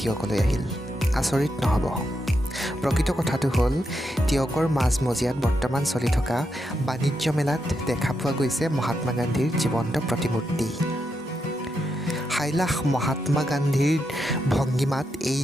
টিয়কলৈ আহিল। আচৰিত নহ'ব। প্ৰকৃত কথাটো হ'ল টিয়কৰ মাজমজিয়াত বৰ্তমান চলি থকা বাণিজ্য মেলাত দেখা পোৱা গৈছে মহাত্মা গান্ধীৰ জীৱন্ত প্ৰতিমূৰ্তি। সাইলাখ মহাত্মা গান্ধীৰ ভংগীমাত এই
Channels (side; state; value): both; normal; correlation 0.84